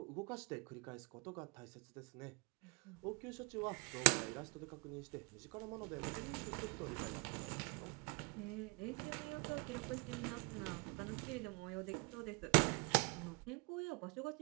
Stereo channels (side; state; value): left; quieter; 31.1 dB